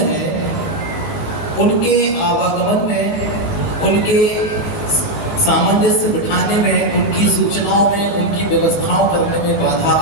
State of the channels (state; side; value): late; right; 18 ms